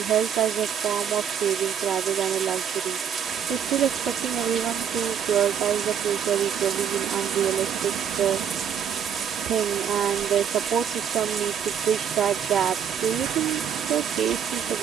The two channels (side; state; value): left; quieter; 8.1 dB